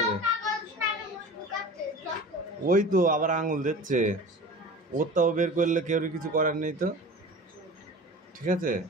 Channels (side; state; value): both; normal; correlation 0.37